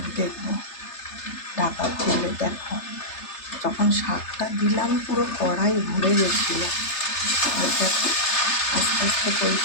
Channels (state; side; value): late; right; 3.3 ms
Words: দেখবো ঢাকা খুলে দেখো যখন শাকটা দিলাম পুরো কড়াই ভরে গেছিলো। দেখো আস্তে আস্তে